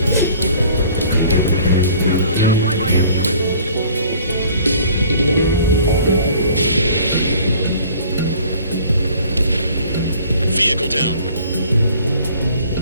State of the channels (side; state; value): both; inverted; correlation -0.52